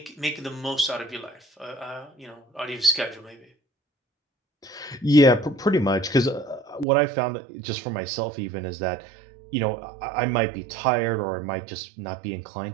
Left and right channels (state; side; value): drops out; left; at 6.9 s